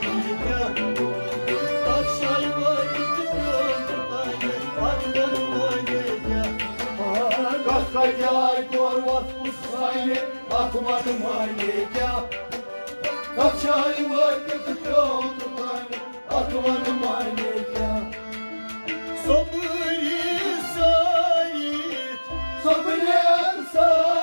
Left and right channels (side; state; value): both; inverted; correlation -1.00